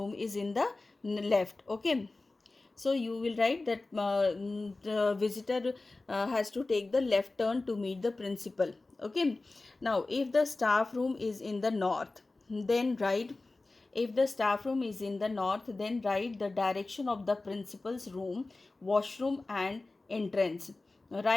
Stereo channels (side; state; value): right; quieter; 3.3 dB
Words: is in the left. Okay, so you will write that the visitor has to take the left turn to meet the principal. Okay, now if the staff room is in the north, then write, if the staff room is in the north, then write the direction of the principal's room, washroom and entrance.